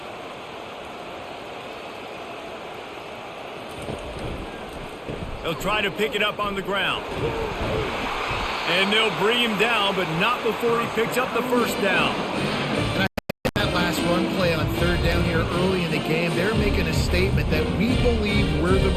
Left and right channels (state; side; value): identical; both; correlation 1.00